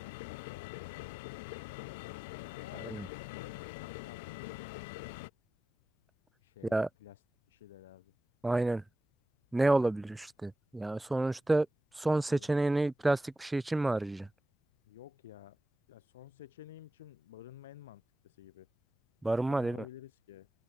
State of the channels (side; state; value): both; normal; correlation 0.94